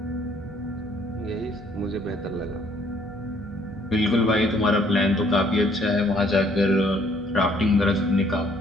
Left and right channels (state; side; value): noise; right; hum, 21 dB below the sound